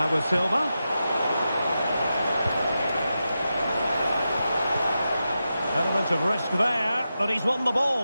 with Silva. Element of risk there, but he's won the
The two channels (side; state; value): both; inverted; correlation -0.90